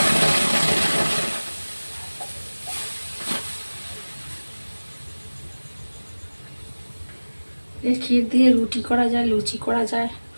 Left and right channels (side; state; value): both; inverted; correlation -1.00